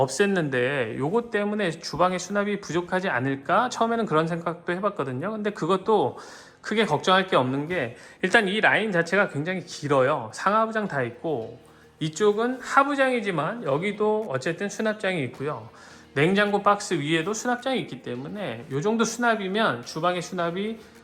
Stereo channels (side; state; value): both; identical; correlation 1.00